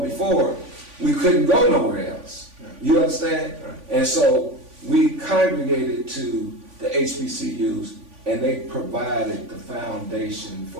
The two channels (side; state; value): left; late; 3.5 ms